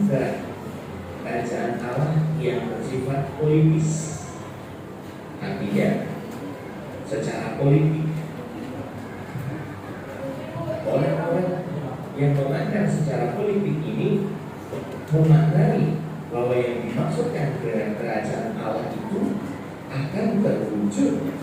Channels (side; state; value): both; identical; correlation 1.00